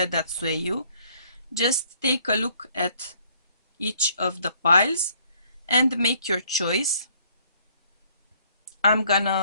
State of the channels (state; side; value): inverted; both; correlation -0.63